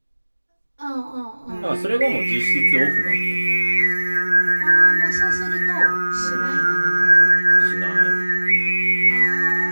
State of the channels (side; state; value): both; inverted; correlation -1.00